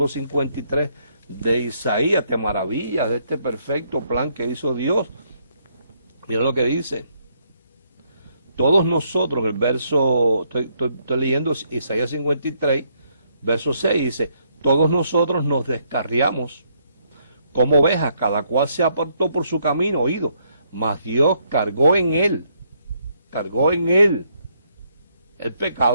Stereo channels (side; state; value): both; inverted; correlation -0.72